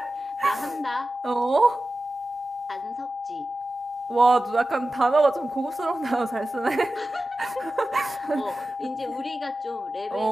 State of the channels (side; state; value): both; normal; correlation 0.94